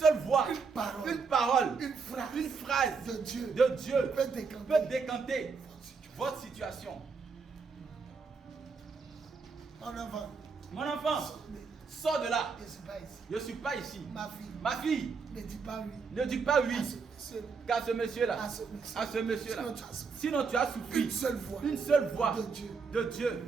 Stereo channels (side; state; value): left; quieter; 5.1 dB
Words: voix, une parole, une phrase de Dieu peut décanter votre situation. Mon enfant, sors de là. Je ne suis pas ici. Ma fille, ne dis pas oui qu'à ce monsieur-là. Sinon tu as souffert. Une seule voix de Dieu